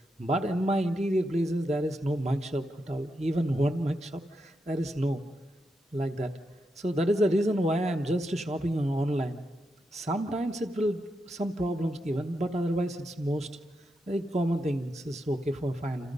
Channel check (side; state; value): both; normal; correlation 0.85